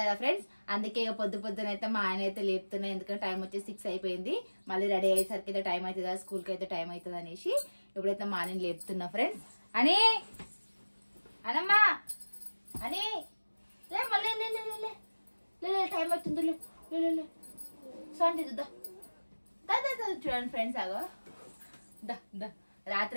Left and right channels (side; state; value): both; inverted; correlation -1.00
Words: ఫ్రెండ్స్. అందుకే ఇక పొద్దున అయితే మా ఆయన అయితే లేపుతున్నాయి. ఎందుకంటే టైం వచ్చి 6 అయిపోయింది. మళ్ళీ రెడీ అయ్యేసరికి అయితే టైం అవుతుంది కదా, స్కూల్కి అయితే టైం అవుతుంది అనేసి ఇప్పుడైతే మా ఆయన లేపుతున్నా ఫ్రెండ్స్. అని అనమ్మా అని మళ్ళీ టైం అవుతుంది. సౌండ్ చూడండి ఫ్రెండ్స్. ఆగో